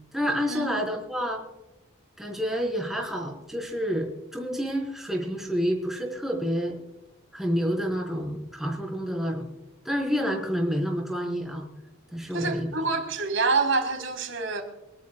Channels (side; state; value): both; normal; correlation 0.49